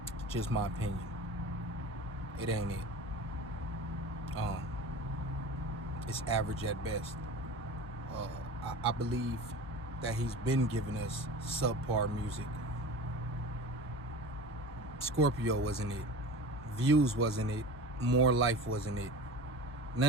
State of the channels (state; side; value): normal; both; correlation 0.35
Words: It's just my opinion. It ain't it. It's average at best. I believe that he's been giving us subpar music. Scorpio wasn't it. Views wasn't it. More Life wasn't it.